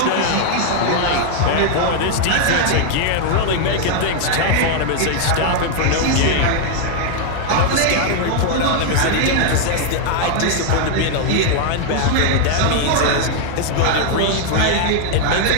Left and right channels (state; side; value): different; both; correlation 0.00